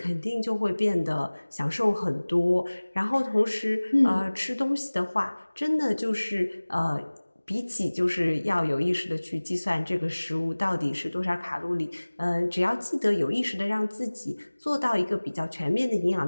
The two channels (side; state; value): both; inverted; correlation -1.00